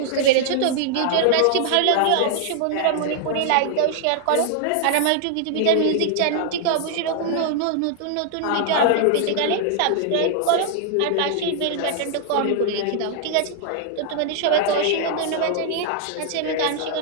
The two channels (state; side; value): different; both; correlation -0.01